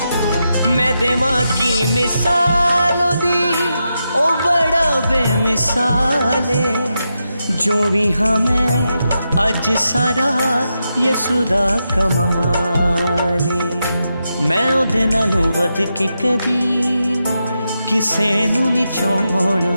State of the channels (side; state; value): both; inverted; correlation -0.87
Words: میں دیواں کی مثال اودی او بڑا بے مثال جو بھی ہمیں اج سارا یسو دا کمال میں اودے نالوں ود کے کدی کسے نوں نہیں چاہنا